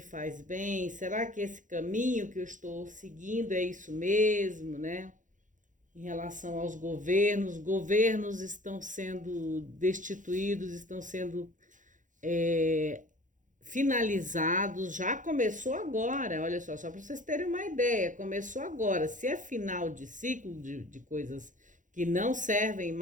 bem? Será que esse caminho que eu estou seguindo é isso mesmo, né? Em relação aos governos estão sendo destituídos, estão sendo finalizados, já começou agora, olha só para vocês terem uma ideia, começou agora. Se é final de ciclo de coisas que não servem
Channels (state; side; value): late; left; 0.37 ms